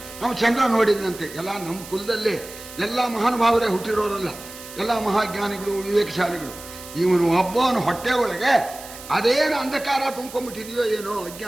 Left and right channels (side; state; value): right; noise; hiss, 15 dB below the sound